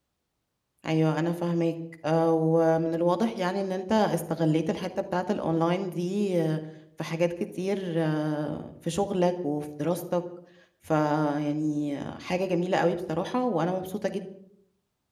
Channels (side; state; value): both; identical; correlation 1.00